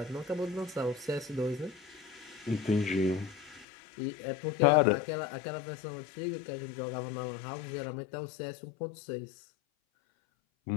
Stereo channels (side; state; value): right; drops out; at 3.7 s